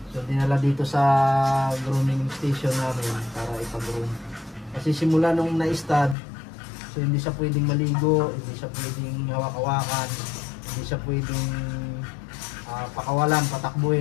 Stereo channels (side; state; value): right; drops out; at 6.2 s